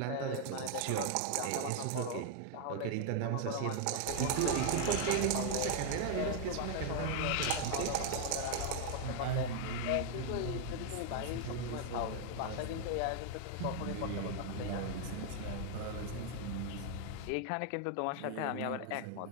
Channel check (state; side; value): different; both; correlation 0.00